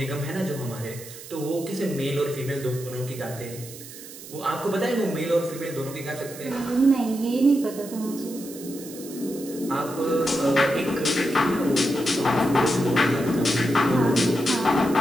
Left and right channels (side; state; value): right; noise; hiss, 15 dB below the sound